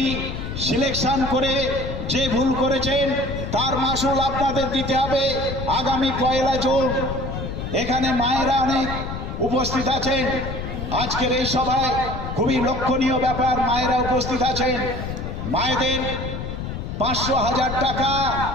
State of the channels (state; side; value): noise; left; rumble, 6 dB below the sound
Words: সিলেকশন করে যে ভুল করেছেন তার মাসুল আপনাদের দিতে হবে আগামী 1 জুন। এখানে মায়েরা অনেক উপস্থিত আছেন। আজকের এই সভায় খুবই লক্ষণীয় ব্যাপার, মায়েরা উপস্থিত আছেন। মায়েদের 500,000 টাকা